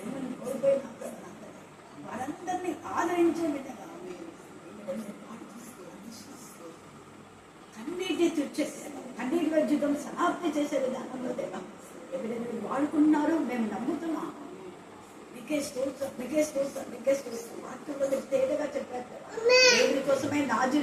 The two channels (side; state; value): both; identical; correlation 1.00